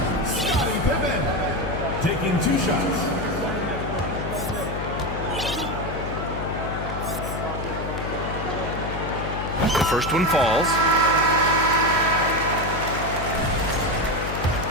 Scottie Pippen. Taking 2 shots. The first one falls.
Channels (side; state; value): left; noise; hum, 6 dB below the sound